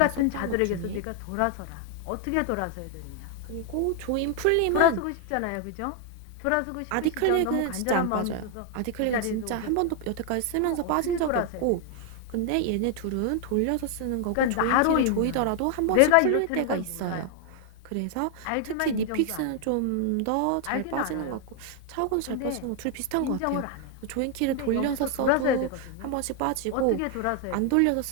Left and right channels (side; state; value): both; different; correlation 0.00